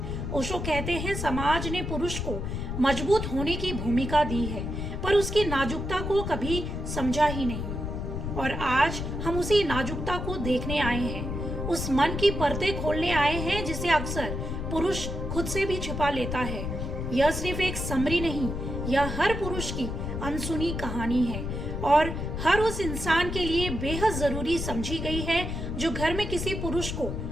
ओशो कहते हैं, समाज ने पुरुष को मजबूत होने की भूमिका दी है, पर उसकी नाजुकता को कभी समझा ही नहीं। और आज हम उसी नाजुकता को देखने आए हैं, उस मन की परतें खोलने आए हैं जिसे अक्सर पुरुष खुद से भी छिपा लेता है। यह सिर्फ एक समरी नहीं, यह हर पुरुष की अनसुनी कहानी है और हर उस इंसान के लिए बेहद जरूरी समझी गई है जो घर में किसी पुरुष को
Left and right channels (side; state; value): left; noise; rumble, 4 dB below the sound